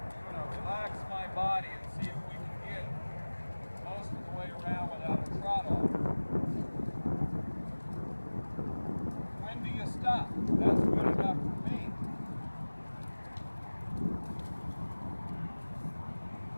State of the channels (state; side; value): inverted; both; correlation -1.00